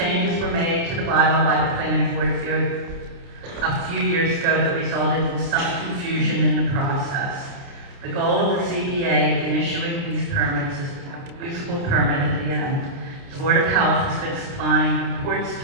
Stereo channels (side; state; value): left; late; 29 ms